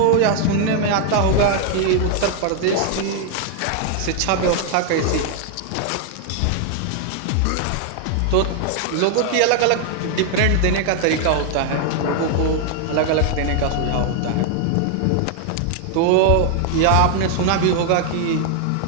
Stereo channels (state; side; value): different; both; correlation 0.00